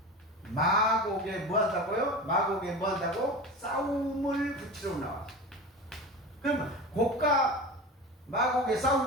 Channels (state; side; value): normal; both; correlation 0.30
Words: 마곡에 뭐한다고요? 마곡에 뭐한다고? 싸움을 붙이러 나왔어. 그러면 곡과 마곡의